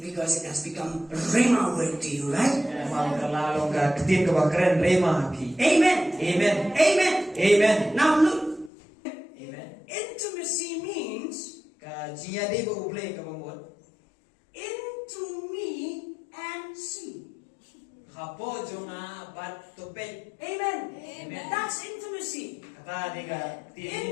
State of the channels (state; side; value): drops out; right; at 8.7 s